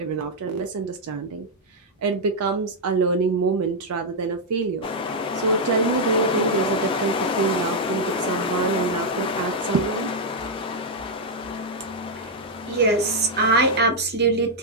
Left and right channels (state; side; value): normal; both; correlation -0.02